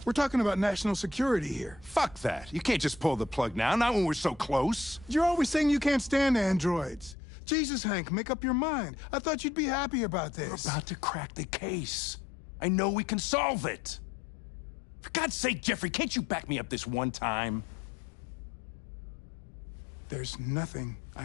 We're talking about national security here. Fuck that. You can't just pull the plug now, not when we're so close. You're always saying you can't stand androids. Jesus, Hank, make up your mind. I thought you'd be happy about this. We're about to crack the case. I know we can solve it. For God's sake, Jeffrey, can't you back me up this one time? There's nothing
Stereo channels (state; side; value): drops out; right; at 7.2 s